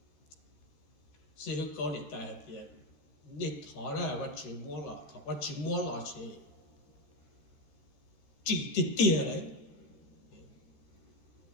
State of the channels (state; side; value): late; right; 14 ms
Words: sẽ hữu có để tại thì nên thọ ra bắt chữ mua lọ thọ bắt chữ mua lọ chỉ tiền đấy